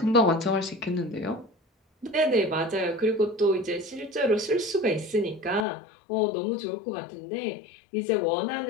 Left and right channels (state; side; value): drops out; right; at 5.7 s